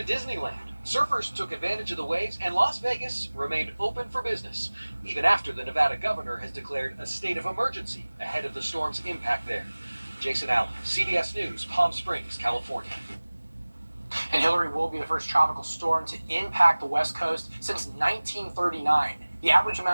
Disneyland. Surfers took advantage of the waves, and Las Vegas remained open for business, even after the Nevada governor has declared a state of emergency ahead of the storm's impact there. Jason Allen, CBS News, Palm Springs, California. And Hillary will be the first tropical storm to impact the West Coast since 1939. The average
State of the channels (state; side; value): inverted; both; correlation -1.00